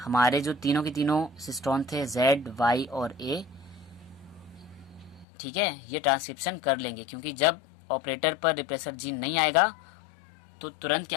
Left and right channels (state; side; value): drops out; right; at 5.2 s